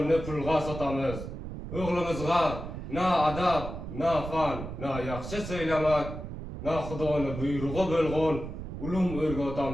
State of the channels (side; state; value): right; noise; rumble, 8 dB below the sound